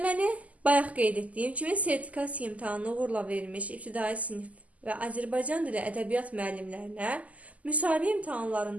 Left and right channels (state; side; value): late; left; 0.072 ms